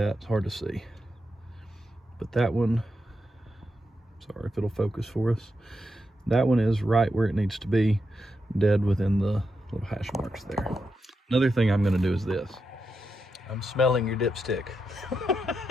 It's hard to see. But that one, sorry if it'll focus for us. That one is right where it needs to be, dead within the little hash marks there. Another thing I'm going to do is this. I'm smelling your dipstick.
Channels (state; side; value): normal; both; correlation 0.85